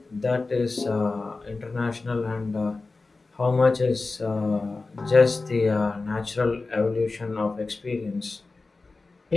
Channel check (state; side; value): quieter; right; 3.7 dB